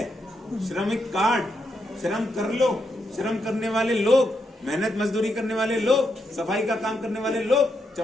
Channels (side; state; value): both; normal; correlation 0.81